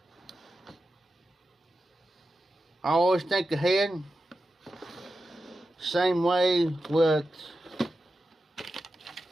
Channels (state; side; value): normal; both; correlation 0.91